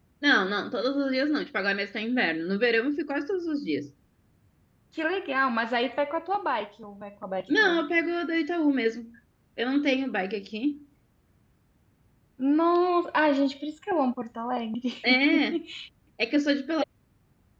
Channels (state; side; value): identical; both; correlation 1.00